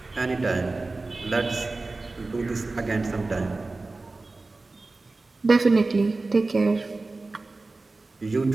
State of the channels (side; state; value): left; quieter; 3.4 dB